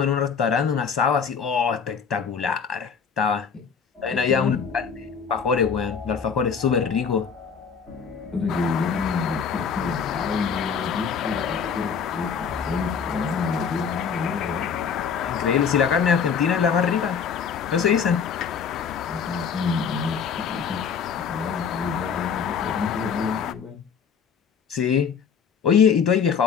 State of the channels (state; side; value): quieter; right; 6.5 dB